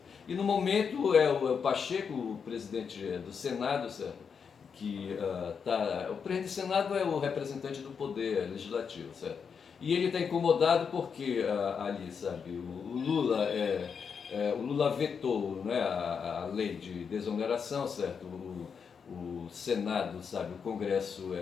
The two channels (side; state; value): right; quieter; 6.3 dB